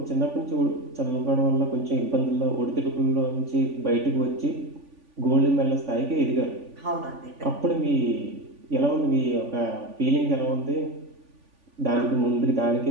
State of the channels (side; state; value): left; late; 3.5 ms